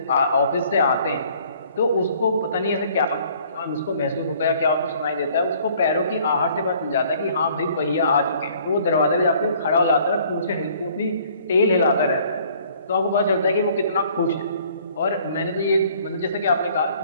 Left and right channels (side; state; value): both; inverted; correlation -0.58